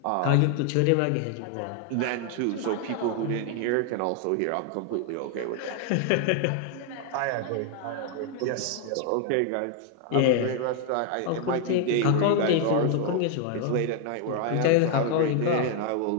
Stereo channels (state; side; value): different; both; correlation 0.00